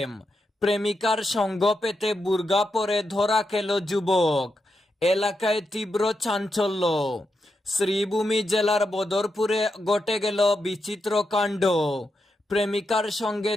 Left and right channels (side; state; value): both; normal; correlation 0.85